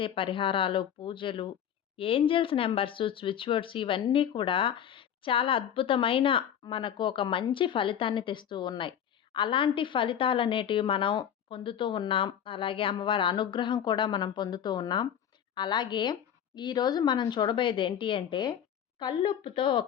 పరిహారాలు, పూజలు, ఏంజెల్స్ నెంబర్స్, స్విచ్ వర్డ్స్ ఇవన్నీ కూడా చాలా అద్భుతమైన మనకు ఒక మంచి ఫలితాన్ని తెస్తూ ఉన్నాయి. అలాంటి ఫలితాలనేటివి మనం పొందుతూ ఉన్నాం. అలాగే అమ్మవారి అనుగ్రహం కూడా మనం పొందుతూ ఉన్నాం. అలాగే ఈరోజు మనం చూడబోయేది ఏంటి అంటే, కల్లుప్పుతో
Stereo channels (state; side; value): quieter; right; 9.2 dB